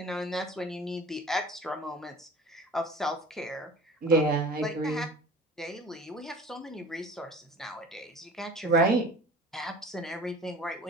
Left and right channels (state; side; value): normal; both; correlation 0.42